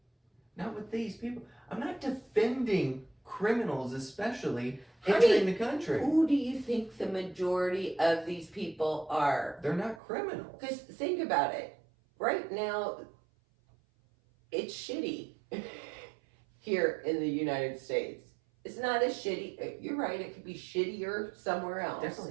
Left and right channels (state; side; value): drops out; left; at 10.0 s